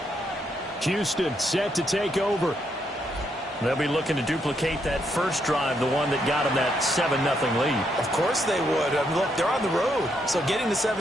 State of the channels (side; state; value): both; normal; correlation 0.77